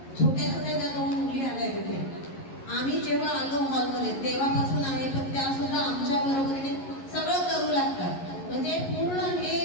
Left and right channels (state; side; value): late; right; 11 ms